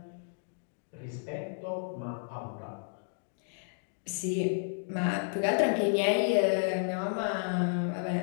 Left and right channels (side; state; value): right; silent; digital silence